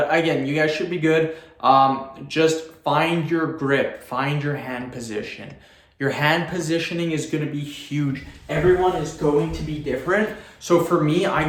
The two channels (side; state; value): both; identical; correlation 1.00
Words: again, you guys should be good. Just find your grip, find your hand position. Your hand positioning is gonna be huge. Everyone is going to be different. So for me, I